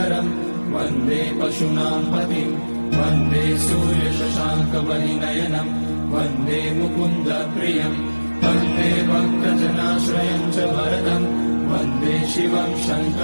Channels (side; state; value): both; inverted; correlation -1.00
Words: वन्दे पशूनां पतिं वन्दे सूर्यशशाङ्कवलिनयनं वन्दे मुकुन्दप्रियं वन्दे भक्तजनाश्रयं च वरदं वन्दे शिवं